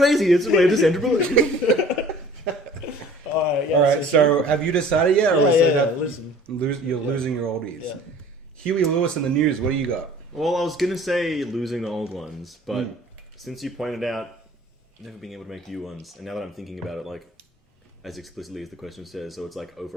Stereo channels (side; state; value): both; normal; correlation 0.49